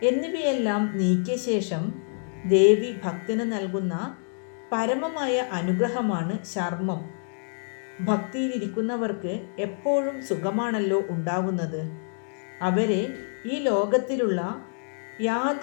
എന്നിവയെല്ലാം നീക്കിയ ശേഷം ദേവി ഭക്തന് നൽകുന്ന പരമമായ അനുഗ്രഹമാണ് ശർമ്മം. ഭക്തിയിലിരിക്കുന്നവർക്ക് എപ്പോഴും സുഖമാണല്ലോ ഉണ്ടാകുന്നത്. അവരെ ഈ ലോകത്തിലുള്ള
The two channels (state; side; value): silent; right; digital silence